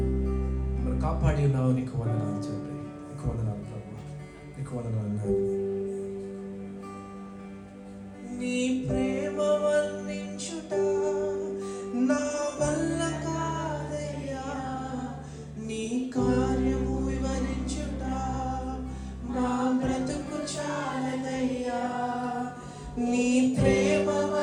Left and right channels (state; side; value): identical; both; correlation 1.00